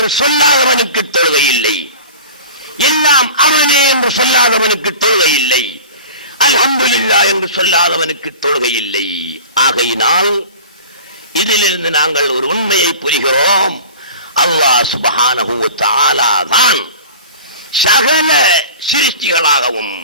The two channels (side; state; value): both; inverted; correlation -0.38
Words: சொல்லாதவனுக்கு தொழுகை இல்லை. எல்லாம் அவனே என்று சொல்லாதவனுக்கு தொழுகை இல்லை. அல்ஹம்துலில்லாஹ் என்று சொல்லாதவனுக்கு தொழுகை இல்லை. ஆகையினால் இதிலிருந்து நாங்கள் ஒரு உண்மையை புரிகிறோம். அல்லாஹ் சுப்ஹானஹு வ தஆலா தான் சகல சிருஷ்டிகளாகவும்,